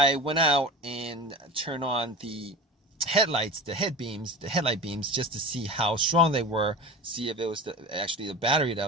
went out and turned on the headlights, the headlight beams, just to see how strong they were, see if it was actually the battery that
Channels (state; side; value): normal; both; correlation 0.32